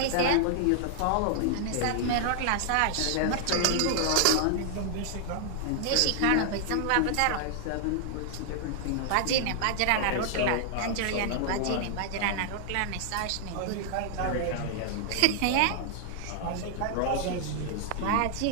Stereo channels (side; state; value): both; different; correlation 0.00